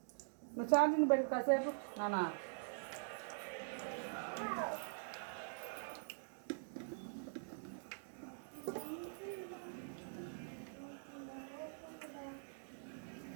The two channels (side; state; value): left; silent; digital silence